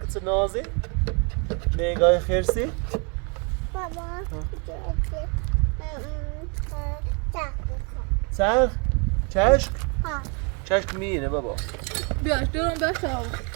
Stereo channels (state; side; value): quieter; left; 34.8 dB